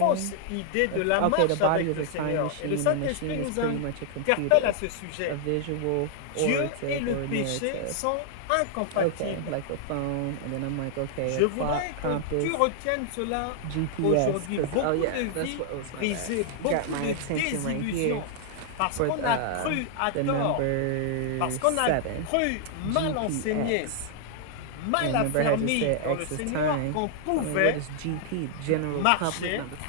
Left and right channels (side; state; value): both; different; correlation 0.00